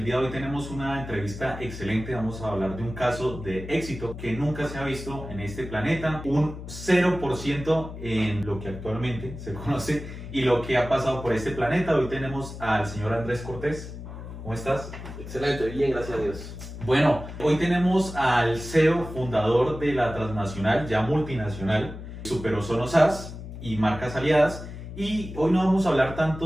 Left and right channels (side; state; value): left; noise; hum, 11 dB below the sound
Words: día de hoy tenemos una entrevista excelente, vamos a hablar de un caso de éxito que nunca se ha visto en este planeta, un 0% en lo que actualmente se conoce y lo que ha pasado por este planeta. Hoy tenemos al señor Andrés Cortés. ¿Cómo estás? Excelente, bien, gracias a Dios. Bueno, hoy tenemos al CEO fundador de la transnacional, ya multinacional, Super Ozono SAS y marcas aliadas. Y hoy no vamos a hablar